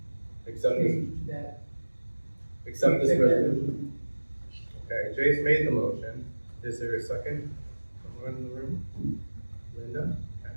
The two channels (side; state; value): both; inverted; correlation -1.00